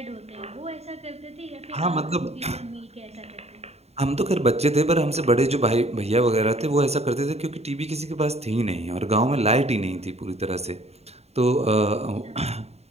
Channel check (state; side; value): late; left; 0.31 ms